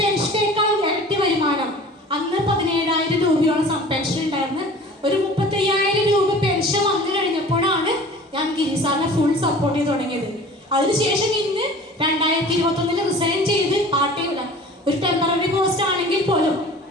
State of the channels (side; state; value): both; normal; correlation 0.43